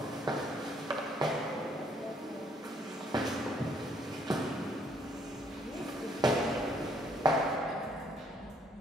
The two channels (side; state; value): both; normal; correlation 0.67